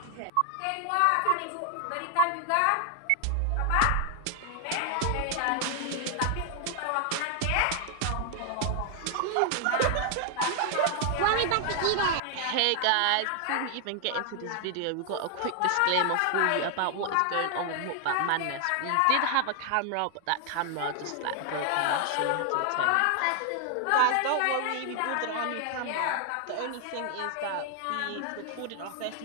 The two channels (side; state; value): both; different; correlation 0.00